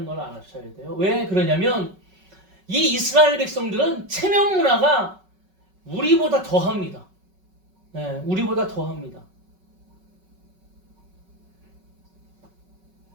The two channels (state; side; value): late; left; 5.3 ms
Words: 걸 알아셔야 돼요. 왜 그러냐면 이 이스라엘 백성들은 체면 문화가 우리보다 더합니다. 우리보다 더합니다.